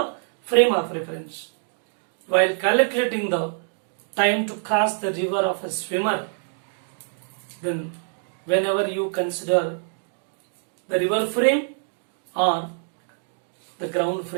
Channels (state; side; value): silent; left; digital silence